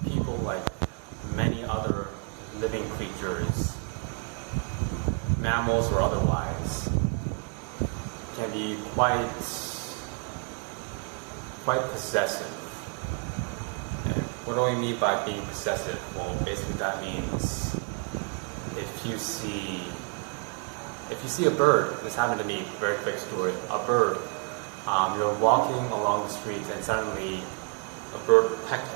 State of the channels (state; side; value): quieter; left; 39.8 dB